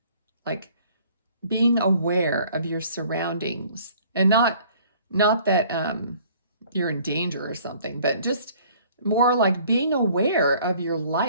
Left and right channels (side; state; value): both; inverted; correlation -0.55